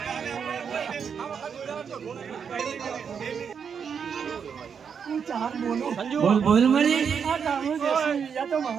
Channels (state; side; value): quieter; left; 6.8 dB